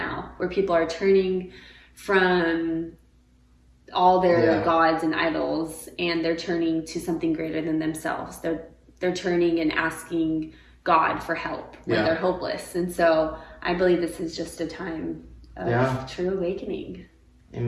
where people are turning from all their gods and idols, and they're turning to something greater than themselves. They're turning and asking God for help when they're hopeless. And so I believe this is just a time of true awakening.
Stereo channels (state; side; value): identical; both; correlation 1.00